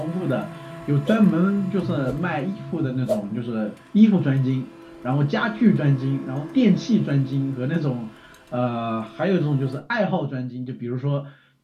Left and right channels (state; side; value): identical; both; correlation 1.00